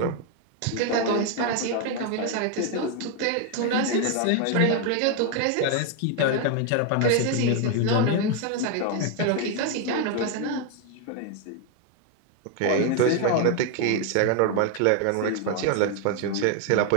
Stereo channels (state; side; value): different; both; correlation 0.01